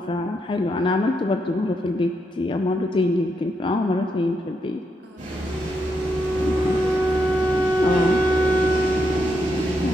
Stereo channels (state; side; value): normal; both; correlation 0.80